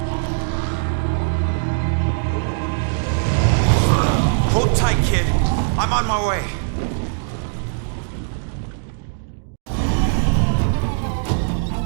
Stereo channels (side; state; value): left; silent; digital silence